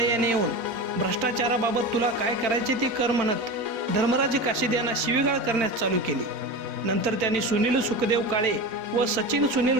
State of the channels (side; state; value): left; late; 4.0 ms